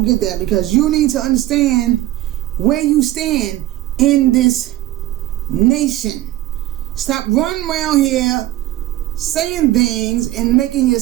because you need to understand where you stand in this nation. Stop running around here saying things and making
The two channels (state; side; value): quieter; left; 15.6 dB